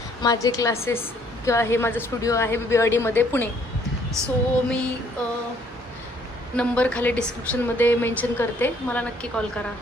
माझे क्लासेस किंवा हे माझं स्टुडिओ आहे BBRD पुणे. सो मी नंबर खाली डिस्क्रिप्शनमध्ये मेन्शन करते, मला नक्की कॉल करा.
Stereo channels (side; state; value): both; normal; correlation 0.63